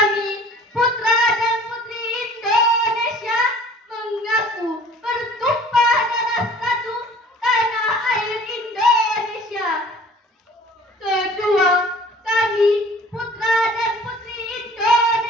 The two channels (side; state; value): both; normal; correlation 0.49